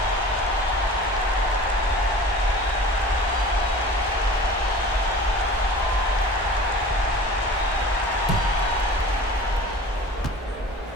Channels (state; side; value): normal; both; correlation 0.40